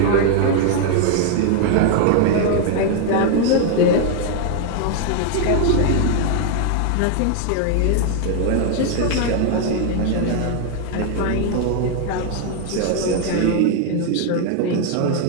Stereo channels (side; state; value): both; different; correlation 0.00